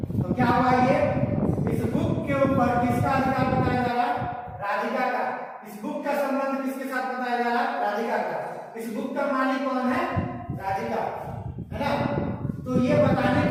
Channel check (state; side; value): identical; both; correlation 1.00